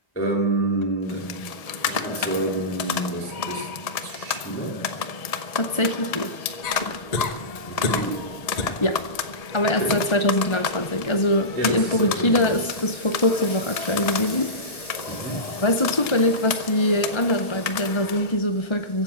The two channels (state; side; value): late; right; 1.7 ms